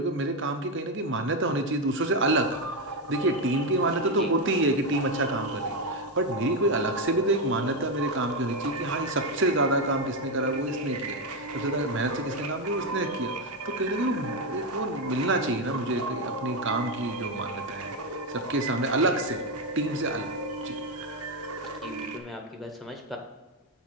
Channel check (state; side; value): normal; both; correlation 0.07